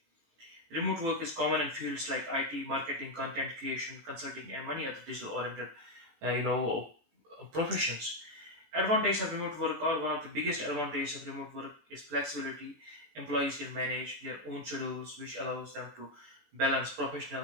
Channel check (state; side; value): late; left; 18 ms